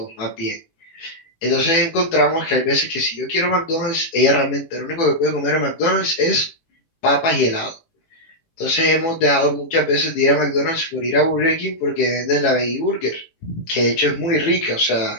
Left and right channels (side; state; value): right; late; 18 ms